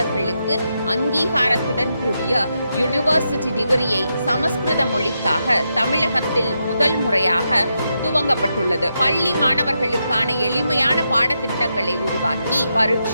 அங்கீகாரத்துடன் கூடிய யூனிவர்சிட்டி டிகிரியை சமஸ்கிருத மொழிக்காக தமிழகத்தில் முதல் முறையாக துவங்கப்பட்டுள்ளது. பள்ளி மாணவர்களுக்கான எளிமையான பாடத்திட்டங்களை உருவாக்கி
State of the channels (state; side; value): inverted; both; correlation -0.84